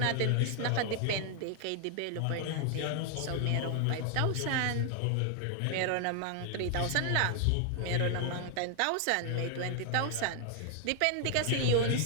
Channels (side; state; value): both; different; correlation 0.00